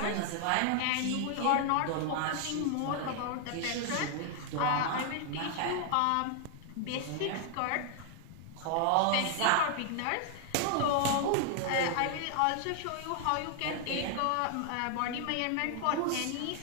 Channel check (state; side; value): different; both; correlation 0.00